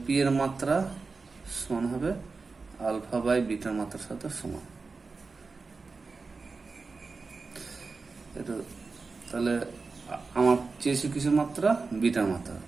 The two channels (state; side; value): quieter; left; 4.2 dB